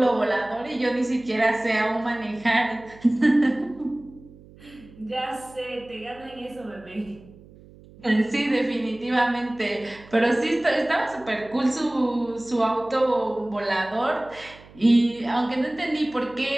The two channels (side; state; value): right; noise; hum, 22 dB below the sound